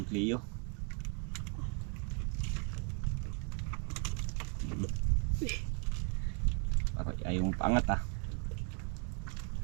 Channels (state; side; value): quieter; left; 39.9 dB